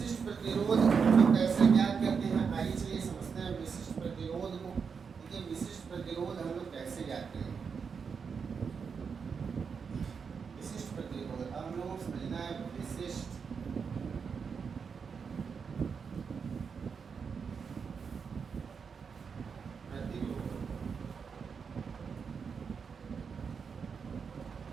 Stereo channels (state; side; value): quieter; left; 6.0 dB